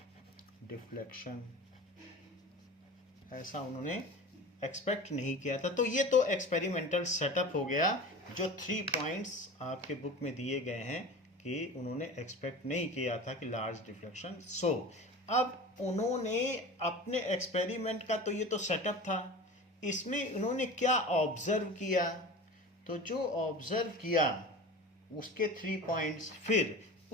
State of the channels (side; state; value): both; normal; correlation 0.35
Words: deflection, ऐसा उन्होंने एक्सपेक्ट नहीं किया था. तो ये तो एक्सपेरिमेंटल सेटअप हो गया, जो 3 पॉइंट्स आपके बुक में दिए गए हैं कि उन्होंने एक्सपेक्ट नहीं किया था कि लार्ज डिफ्लेक्शन. सो अब उन्होंने अपने एक्सपेरिमेंट का तो ये तो सेटअप था, इसमें उन्होंने क्या ऑब्जर्व किया, तो जो ऑब्जर्व किया उसके 3 पॉइंट्स, फिर